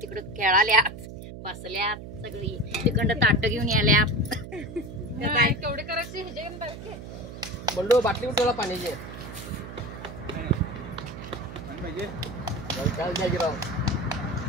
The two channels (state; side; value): noise; right; hum, 11 dB below the sound